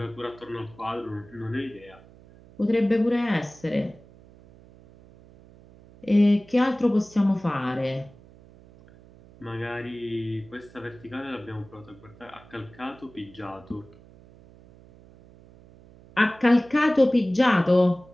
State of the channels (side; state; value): right; noise; hum, 24 dB below the sound